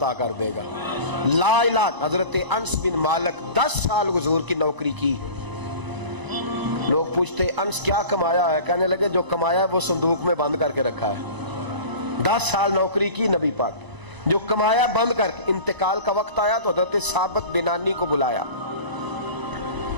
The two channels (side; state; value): left; late; 1.0 ms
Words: کر دے گا۔ لا علاج۔ حضرت انس بن مالک 10 سال حضور کی نوکری کی، لوگ پوچھتے انس کیا کمایا ہے، کہنے لگے جو کمایا ہے وہ صندوق میں بند کر کے رکھا ہے۔ 10 سال نوکری کی نبی پاک، جو کمایا بند کر کے، انتقال کا وقت آیا تو حضرت ثابت بنانی کو بلایا،